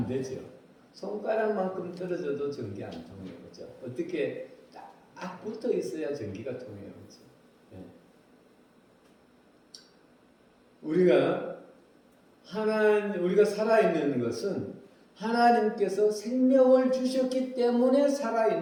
되죠. 손가락만큼 떨어져도 전기 안 통해요, 그렇죠? 어떻게 딱 붙어 있어야 전기가 통해요, 그렇죠? 우리가 살아있는 것은 하나님께서 생명을 주셨기 때문에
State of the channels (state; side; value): identical; both; correlation 1.00